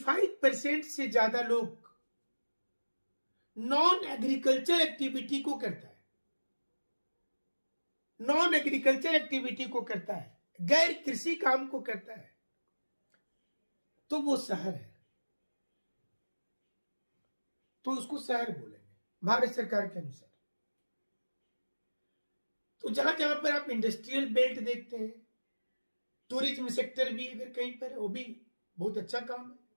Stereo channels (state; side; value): inverted; both; correlation -1.00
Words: से ज्यादा लोग नॉन एग्रीकल्चर एक्टिविटी को करता है, नॉन एग्रीकल्चर एक्टिविटी को करता है, गैर कृषि काम को करता है, तो वो शहर है, तो उसको शहर बोलेंगे भारत सरकार के अनुसार। तो जहां जहां पर आप इंडस्ट्रियल बेल्ट देखते हैं, टूरिज्म सेक्टर भी अगर कहीं पर, वो भी बहुत अच्छा काम है।